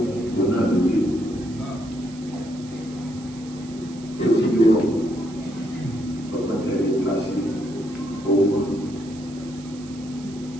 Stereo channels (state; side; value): noise; right; hiss, 21 dB below the sound